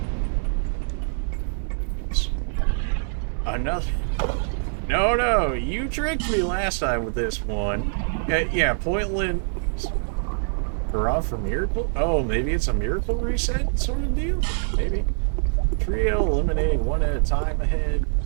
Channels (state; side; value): silent; left; 62 dB below the other